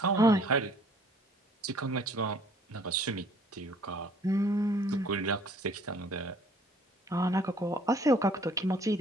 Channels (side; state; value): both; normal; correlation 0.57